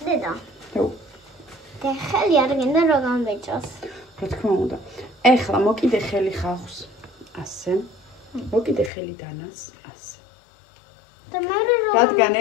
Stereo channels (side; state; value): right; drops out; at 8.9 s